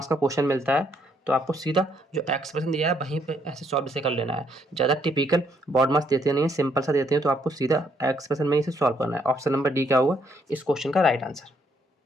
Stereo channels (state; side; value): normal; both; correlation 0.71